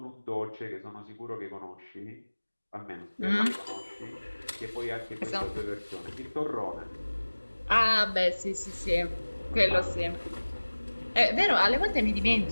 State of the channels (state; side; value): inverted; both; correlation -1.00